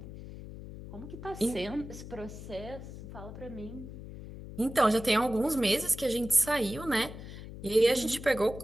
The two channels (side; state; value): left; noise; hum, 12 dB below the sound